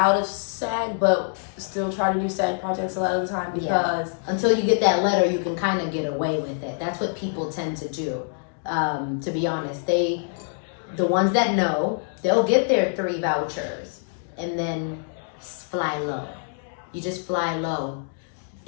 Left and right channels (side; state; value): right; silent; digital silence